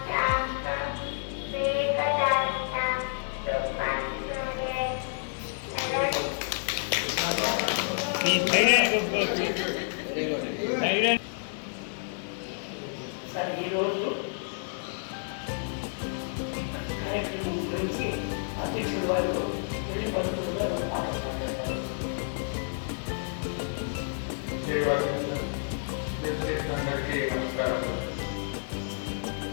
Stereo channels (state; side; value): silent; right; digital silence